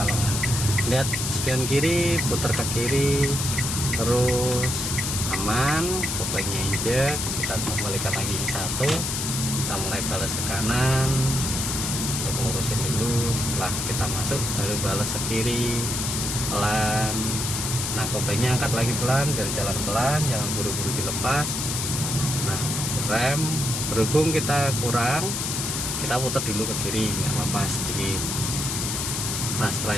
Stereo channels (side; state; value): left; noise; hiss, 2 dB below the sound